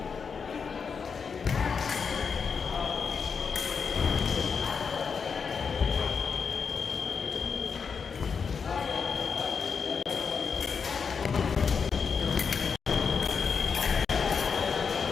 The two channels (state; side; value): quieter; right; 5.9 dB